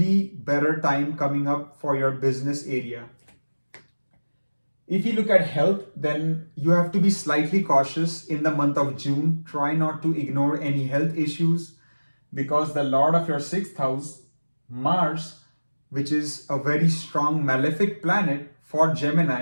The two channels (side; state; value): both; inverted; correlation -1.00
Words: better time coming up for your business area. If you look at health, then you have to be slightly cautious in the month of June. Try not to ignore any health issues because the Lord of your 6th house, Mars, which is a very strong malefic planet for